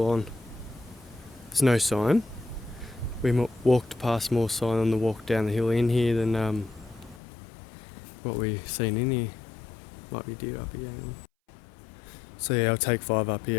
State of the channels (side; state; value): right; drops out; at 7.2 s